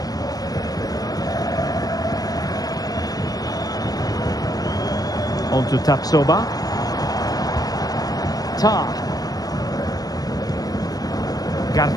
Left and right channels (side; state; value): right; late; 0.18 ms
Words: On to Tapsoba. Tar.